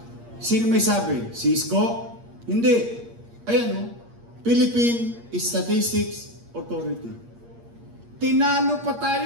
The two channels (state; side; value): late; left; 8.5 ms